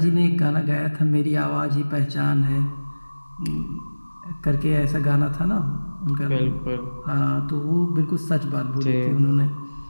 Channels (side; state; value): both; inverted; correlation -1.00